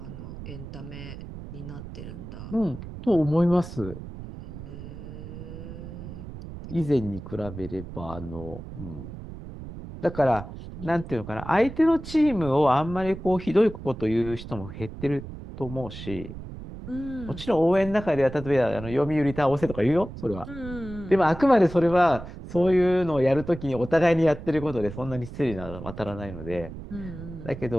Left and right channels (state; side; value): noise; right; rumble, 12 dB below the sound